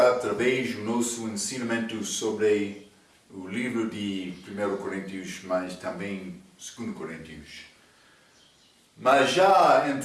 do nosso ensinamento sobre o livro de 1 Coríntios, mas também 2 Coríntios. Mas já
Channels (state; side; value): identical; both; correlation 1.00